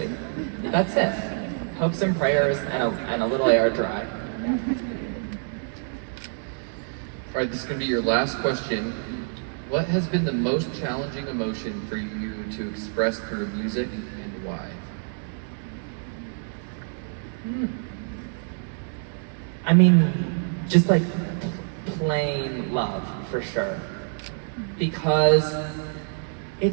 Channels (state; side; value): silent; left; 61 dB below the other